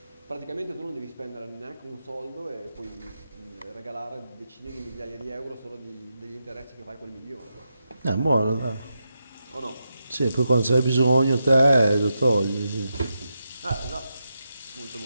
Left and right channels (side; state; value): both; inverted; correlation -0.86